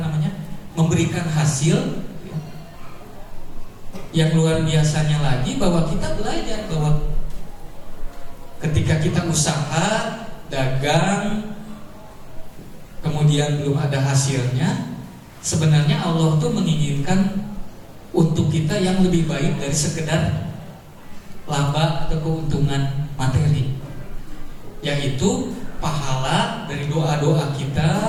memberikan hasil. Yang luar biasanya lagi bahwa kita belajar bahwa ketika kita usaha, dagang, kemudian belum ada hasilnya, sebenarnya Allah tuh menginginkan untuk kita yang lebih baik dari sekedar laba atau keuntungan materi, yaitu pahala dari doa-doa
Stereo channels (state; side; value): identical; both; correlation 1.00